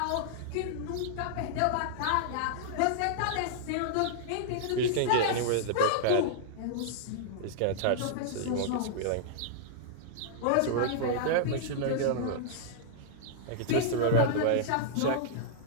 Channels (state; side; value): different; both; correlation -0.01